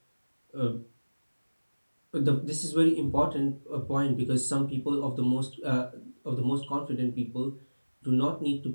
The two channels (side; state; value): both; inverted; correlation -1.00